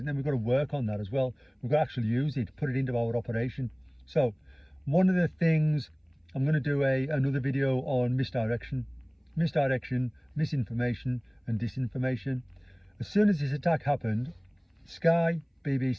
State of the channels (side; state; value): both; identical; correlation 1.00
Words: then we've got to work on that as well. We've got to actually use it, put it into our operation. So one of the things, I'm going to do another video on misdirection, misinformation and disinformation. As soon as this attack happened, Sky,